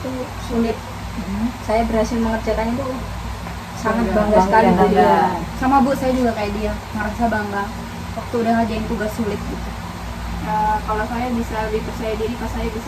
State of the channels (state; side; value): identical; both; correlation 1.00